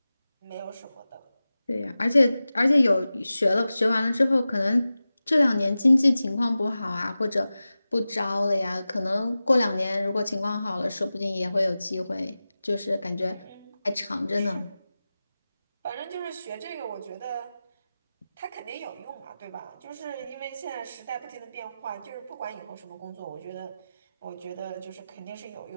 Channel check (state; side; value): inverted; both; correlation -0.95